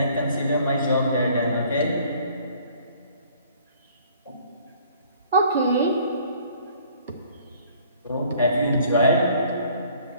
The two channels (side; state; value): both; inverted; correlation -0.57